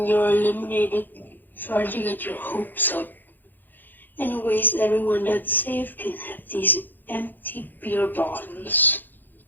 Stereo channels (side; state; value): right; late; 0.088 ms